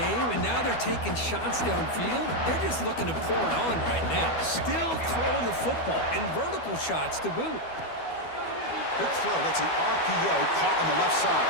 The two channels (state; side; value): late; right; 12 ms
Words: and now they're taking shots downfield. They're just looking to pour it on right now. Still throwing the football, and vertical shots to boot. Quick throw, that's an RPO caught on the left